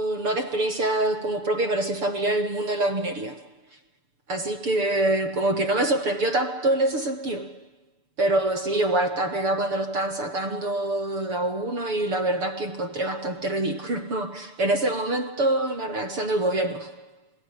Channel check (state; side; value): late; left; 6.9 ms